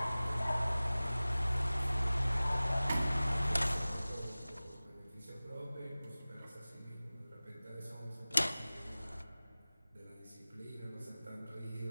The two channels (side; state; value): both; inverted; correlation -0.98